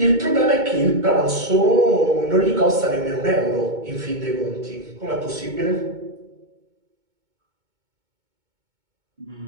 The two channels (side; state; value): left; late; 2.2 ms